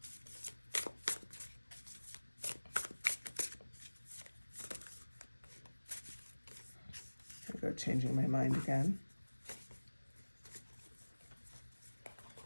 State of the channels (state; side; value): inverted; both; correlation -1.00